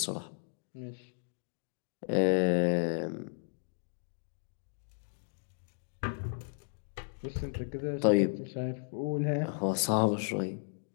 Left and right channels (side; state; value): right; silent; digital silence